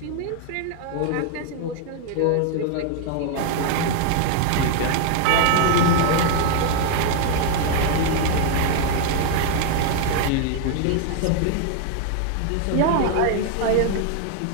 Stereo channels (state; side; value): different; both; correlation 0.00